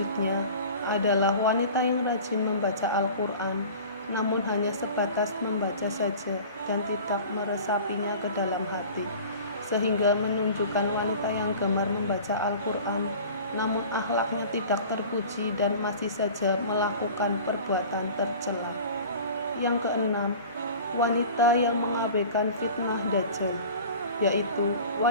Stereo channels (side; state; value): both; inverted; correlation -0.40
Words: adalah wanita yang rajin membaca Al-Quran, namun hanya sebatas membaca saja dan tidak meresapinya ke dalam hati, sehingga menunjukkan wanita yang gemar membaca Al-Quran namun akhlaknya tidak terpuji dan masih saja melakukan perbuatan tercela. Yang keenam, wanita yang mengabaikan fitnah Dajjal, yaitu